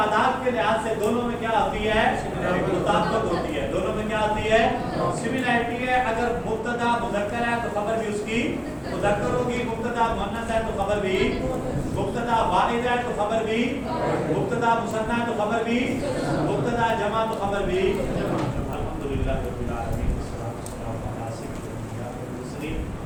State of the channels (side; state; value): both; identical; correlation 1.00